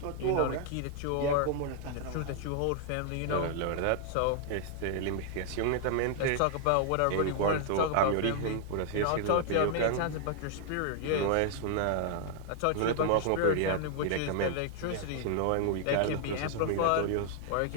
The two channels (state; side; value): different; both; correlation 0.00